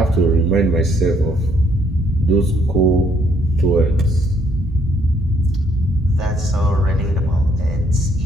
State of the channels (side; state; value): both; normal; correlation 0.68